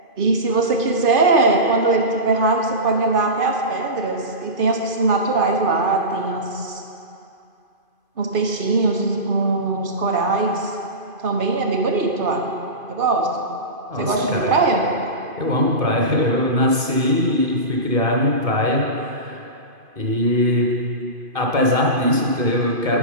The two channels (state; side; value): late; left; 2.5 ms